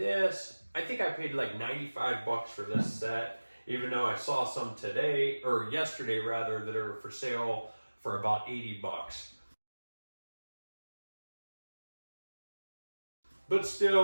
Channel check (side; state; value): both; inverted; correlation -1.00